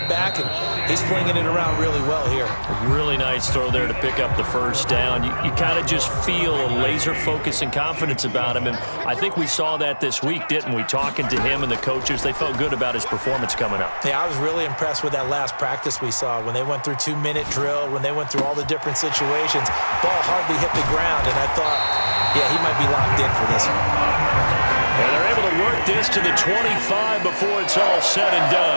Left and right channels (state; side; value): inverted; both; correlation -1.00